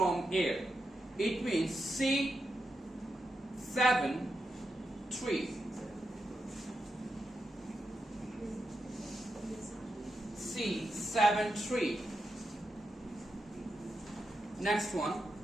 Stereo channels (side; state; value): both; normal; correlation 0.86